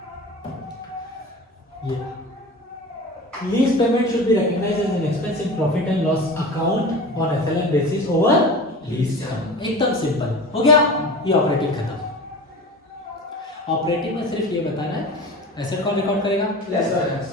ये lease payment should be recognised as an expense in profit and loss account on FLN basis over lease term. एकदम सिंपल हो गया। ये ऑपरेटिंग खत्म। ऑपरेटिंग में सिर्फ ये बताना है एसेट कौन रिकॉर्ड करेगा? लेसर।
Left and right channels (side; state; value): both; normal; correlation 0.34